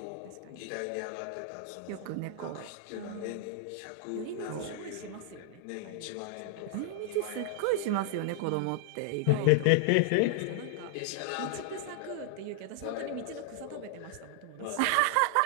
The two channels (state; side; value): different; both; correlation 0.00